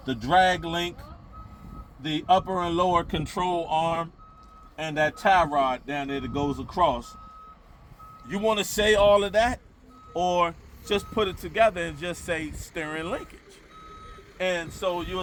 the drag link, the upper and lower control arm, and that tie rod down there that goes across. You want to say all of that, or just put it together and just say steering linkage? And so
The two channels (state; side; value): identical; both; correlation 1.00